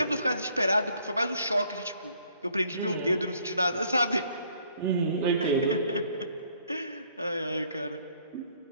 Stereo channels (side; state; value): both; inverted; correlation -0.64